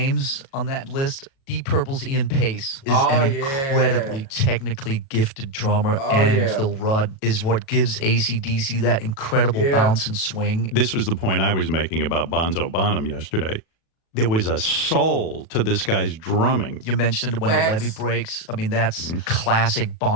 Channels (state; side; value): late; right; 37 ms